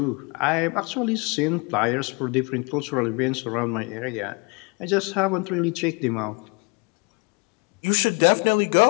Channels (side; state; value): right; quieter; 30.2 dB